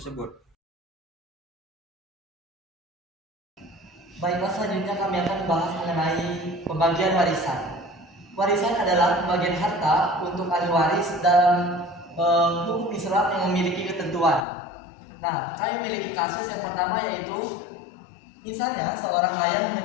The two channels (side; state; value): right; drops out; at 14.5 s